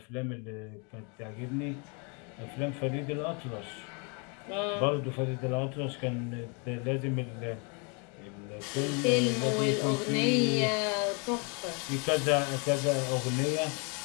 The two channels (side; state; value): right; quieter; 34.5 dB